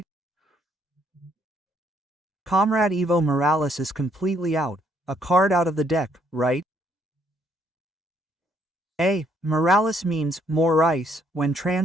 Comrade Evo Morales is completely out, a card out of the deck, right? Morales means more ice when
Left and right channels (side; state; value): both; normal; correlation 0.69